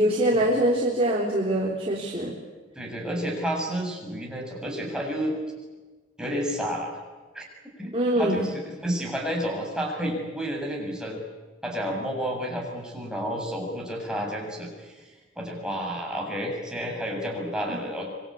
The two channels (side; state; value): both; normal; correlation 0.45